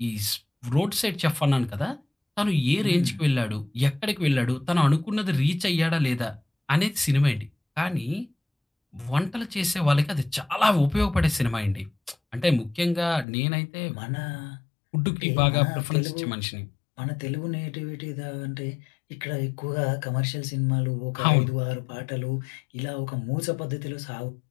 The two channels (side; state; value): right; drops out; at 13.2 s